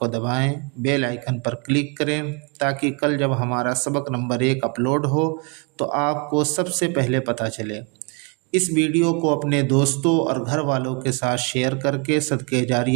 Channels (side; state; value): left; quieter; 33.7 dB